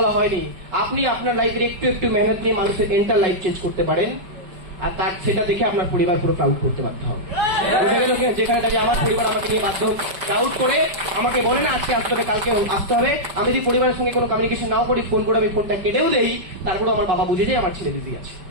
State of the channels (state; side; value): late; left; 5.1 ms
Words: হয়নি। আপনি আপনার লাইফের একটু একটু মেহনত নিয়ে মানুষের এন্টার লাইফ চেঞ্জ করতে পারেন, আর তার সেটা দেখে আপনার পরিবার পুরো প্রাউড করতে বাধ্য হবে। বুঝে গেল কি? যেখানে দাঁড়িয়ে আমার পরিবার আমাকে নিয়ে বাধ্য প্রাউড করে আমাকে বলে না আজকে আসতে হবে, কালকে আসতে হবে। আমি যদি পরিবারের সঙ্গে কোনো কমিউনিকেশন নাও করি, ফোন করে আমি ফোনটা কেটেও দেই, তারপরে আমার বাবা বুঝে যায় আমার ছেলে বিজি আছে।